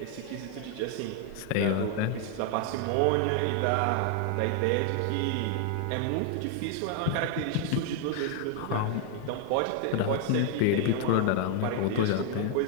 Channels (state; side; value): different; both; correlation 0.00